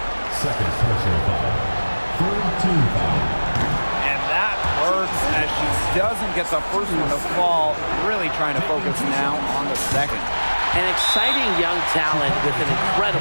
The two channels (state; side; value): inverted; both; correlation -1.00